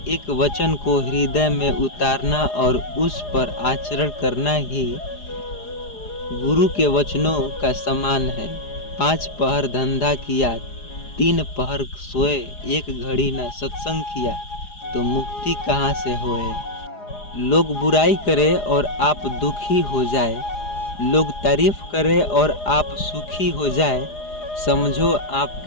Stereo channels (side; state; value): right; late; 4.9 ms